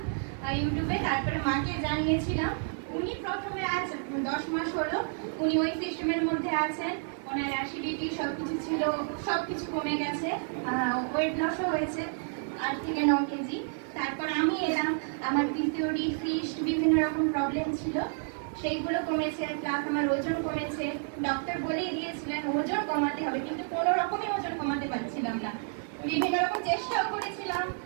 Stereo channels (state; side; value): silent; left; 58 dB below the other